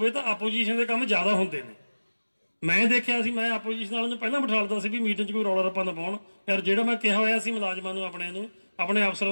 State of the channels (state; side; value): inverted; both; correlation -1.00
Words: ਤਾਂ ਆਪੋਜੀਸ਼ਨ ਦੇ ਕੰਮ ਜ਼ਿਆਦਾ ਹੁੰਦੇ ਨੇ। ਮੈਂ ਦੇਖਿਆ ਸੀ, ਮੈਂ ਆਪੋਜੀਸ਼ਨ ਵਾਲਿਆਂ ਨੂੰ ਪਹਿਲਾਂ ਬਿਠਾ ਲਦਾ ਸੀ ਵੀ ਮੀਟਿੰਗ 'ਚ ਕੋਈ ਰੌਲਾ ਰੱਪਾ ਨਾ ਪਾਉਣ। ਯਾਰ ਜਿਹੜਾ ਮੈਂ ਕਿਹਾ ਹੋਇਆ ਸੀ ਮੁਲਾਜ਼ਮਾਂ ਨੂੰ, ਆਪਣੇ